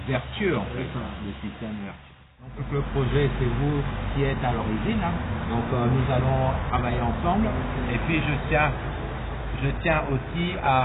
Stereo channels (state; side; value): identical; both; correlation 1.00